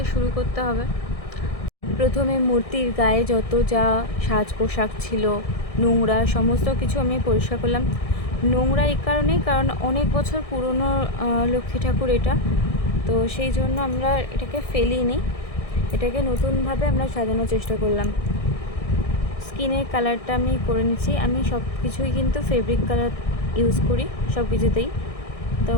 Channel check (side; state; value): right; late; 1.6 ms